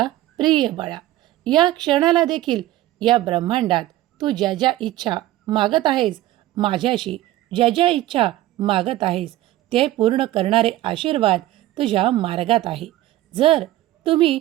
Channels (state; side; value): quieter; left; 15.3 dB